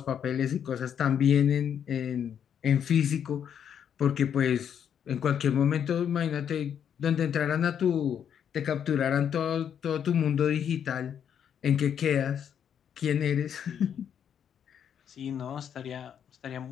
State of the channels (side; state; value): right; quieter; 8.6 dB